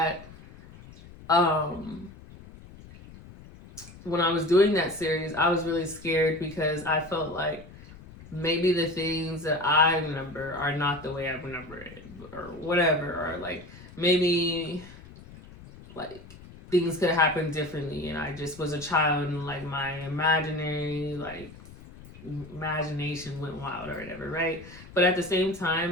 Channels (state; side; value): noise; left; rumble, 18 dB below the sound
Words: when I was doing that series, I was really scared because I felt like maybe the things that I remember are not the way I remember it, or whatever, or like maybe like things could happen differently, and I just was a child, and like my imagination went wild or whatever, right? But at the same